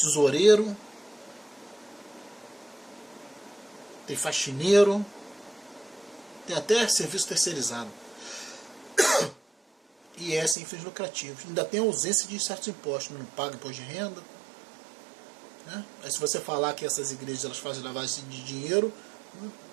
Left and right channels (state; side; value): drops out; left; at 10.6 s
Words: tem faxineiro, tem até serviço terceirizado. E é sem fins lucrativos. Ainda tem ausência de certos impostos, não paga imposto de renda. Né? Aí se você falar que essas igrejas elas fazem lavagem de dinheiro,